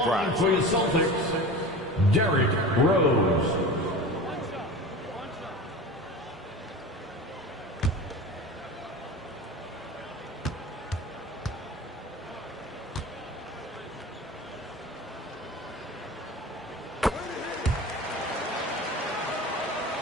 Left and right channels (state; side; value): normal; both; correlation 0.34